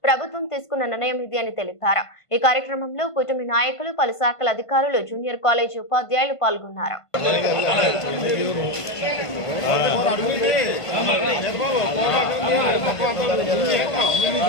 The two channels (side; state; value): right; late; 1.5 ms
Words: ప్రభుత్వం తీసుకున్న నిర్ణయం ఇది అని తెలిపారు. ఈ కార్యక్రమంలో కూటమి నాయకులు, పలు శాఖల అధికారులు, జూనియర్ కాలేజీ ఉపాధ్యాయులు పాల్గొన్నారు.